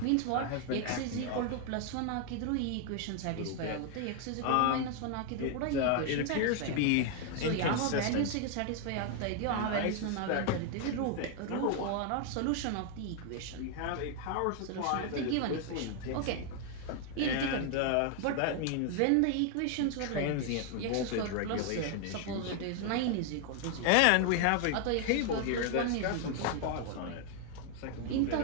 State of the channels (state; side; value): different; both; correlation 0.00